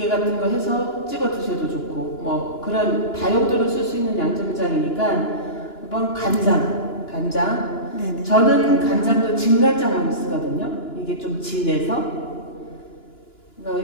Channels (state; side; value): late; right; 2.9 ms